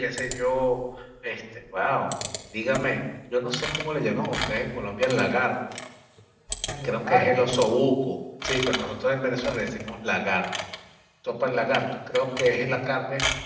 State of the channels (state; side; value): identical; both; correlation 1.00